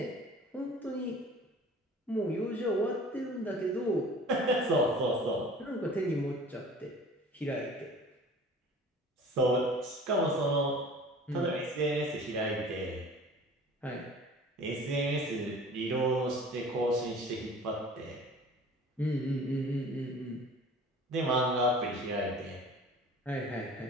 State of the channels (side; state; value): both; normal; correlation 0.44